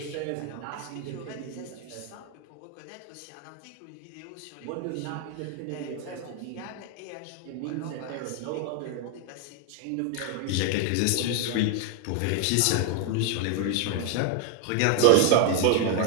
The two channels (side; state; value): both; different; correlation 0.00